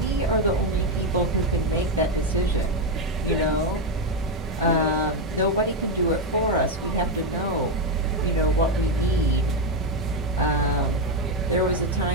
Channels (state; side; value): normal; both; correlation 0.05